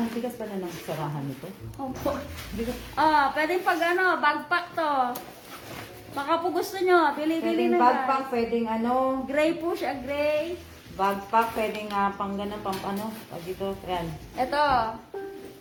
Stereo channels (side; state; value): both; identical; correlation 1.00